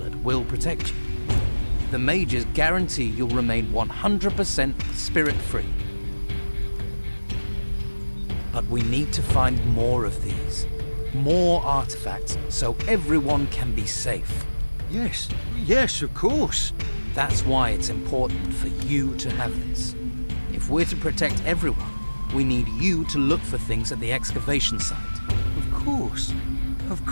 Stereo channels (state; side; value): inverted; both; correlation -1.00